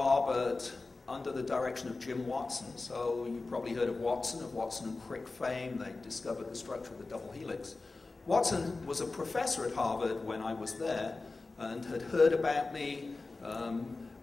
under the direction of Jim Watson. So you've probably heard of Watson and Crick fame. They discovered the structure of the double helix. Watson was a professor at Harvard when I was there and had heard about me.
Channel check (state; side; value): quieter; right; 3.6 dB